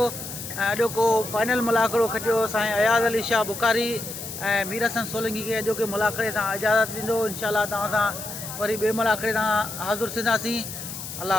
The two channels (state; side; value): noise; left; hiss, 9 dB below the sound